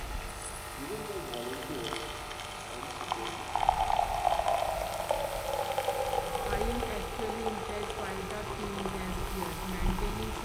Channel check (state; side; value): identical; both; correlation 1.00